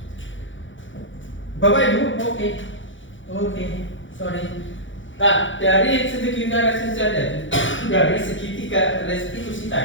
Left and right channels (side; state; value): right; late; 0.56 ms